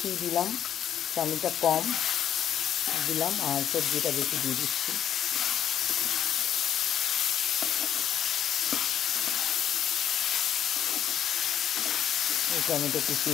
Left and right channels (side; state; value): right; quieter; 9.9 dB